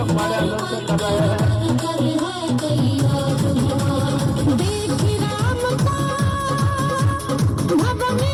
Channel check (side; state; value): both; identical; correlation 1.00